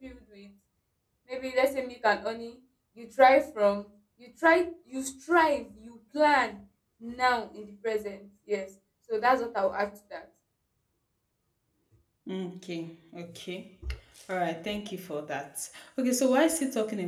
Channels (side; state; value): both; identical; correlation 1.00